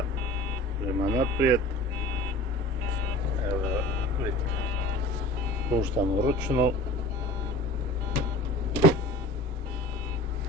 prema naprijed, evo vidite, puštamo ručnu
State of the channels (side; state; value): both; normal; correlation 0.40